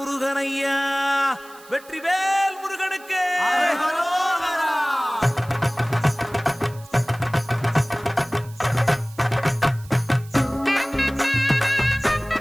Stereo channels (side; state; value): right; noise; hiss, 23 dB below the sound